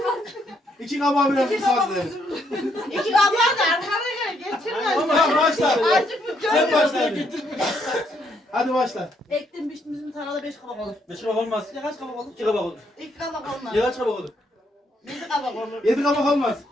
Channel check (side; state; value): both; normal; correlation 0.73